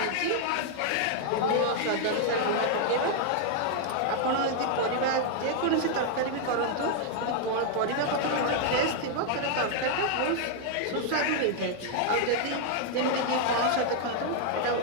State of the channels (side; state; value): both; different; correlation 0.00